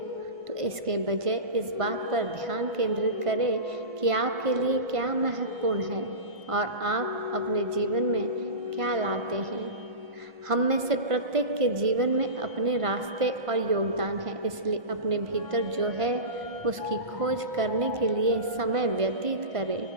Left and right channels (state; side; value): late; left; 1.5 ms